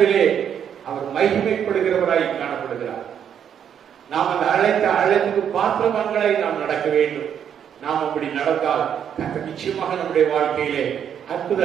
அவர் மகிமைப்படுகிறவராய் காணப்படுகிறார். நாம் அந்த அழைப்புக்கு பாத்திரவான்களை நாம் நடக்க வேண்டும். நாம் அப்படி நடந்தால் கர்த்தர் நிச்சயமாக நம்முடைய வாழ்க்கையிலே அற்புத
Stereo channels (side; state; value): left; quieter; 8.7 dB